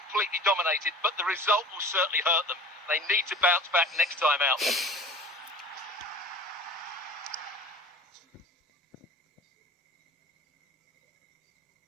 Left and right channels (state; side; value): normal; both; correlation 0.41